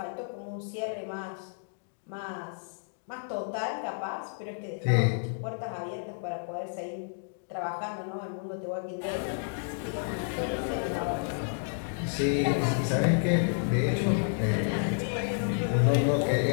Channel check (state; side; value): silent; right; digital silence